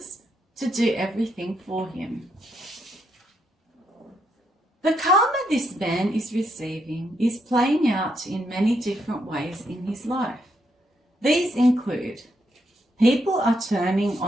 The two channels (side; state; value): both; normal; correlation 0.78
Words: to do everything for him. The karma this man is receiving is playing out in many different ways in his life. These include people are turning